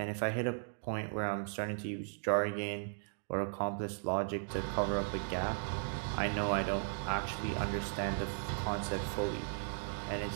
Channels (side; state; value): left; silent; digital silence